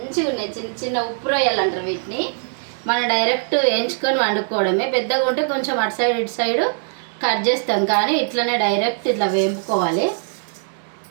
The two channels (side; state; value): left; silent; digital silence